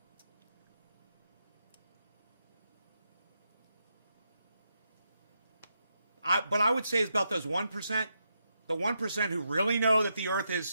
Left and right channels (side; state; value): both; inverted; correlation -0.83